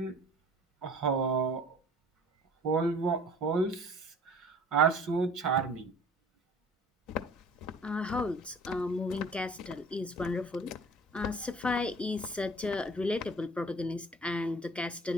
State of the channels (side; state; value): both; normal; correlation 0.47